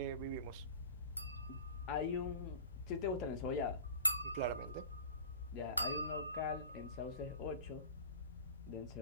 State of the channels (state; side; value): inverted; both; correlation -0.38